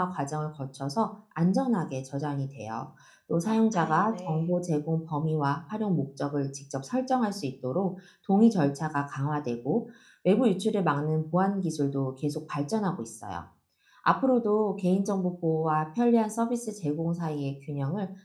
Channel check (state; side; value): identical; both; correlation 1.00